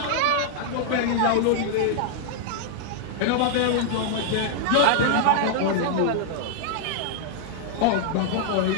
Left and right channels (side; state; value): both; different; correlation -0.01